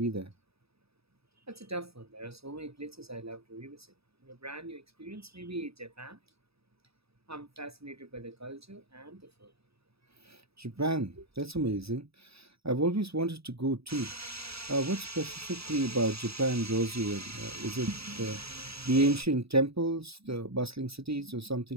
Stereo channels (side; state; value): left; late; 0.77 ms